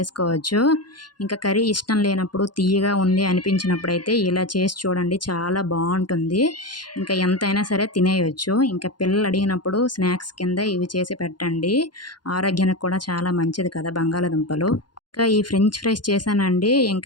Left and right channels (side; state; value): right; late; 0.71 ms